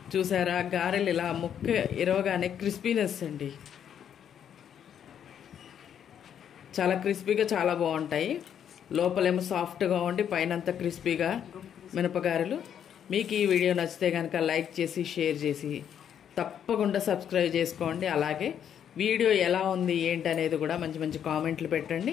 చూసారా గారెలు ఇలా ముక్క ఇరవగానే క్రిస్పీనెస్ అండి, చాలా క్రిస్పీగా చాలా బాగుంటాయి. లోపలేమో సాఫ్ట్గా ఉండి పైన అంతా క్రిస్పీగా మినపగారెలు. మీకు ఈ వీడియో నచ్చితే కనుక లైక్ చేసి షేర్ చేసి తప్పకుండా సబ్స్క్రైబ్ చేసుకోండి. అలాగే వీడియో ఎలా ఉంది ఏంటి అనేది కూడా మంచి మంచి కామెంట్లు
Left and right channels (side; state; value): right; quieter; 9.0 dB